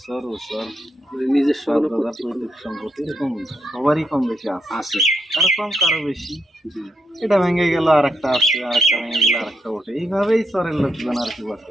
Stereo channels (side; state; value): both; normal; correlation 0.79